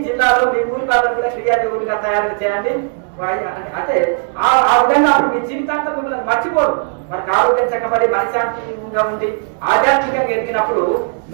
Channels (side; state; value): left; silent; 56 dB below the other